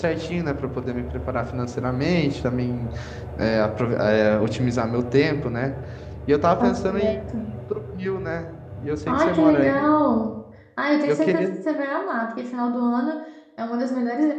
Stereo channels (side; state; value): both; identical; correlation 1.00